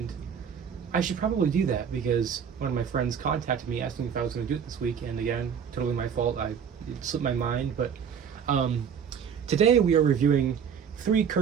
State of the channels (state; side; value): quieter; left; 7.4 dB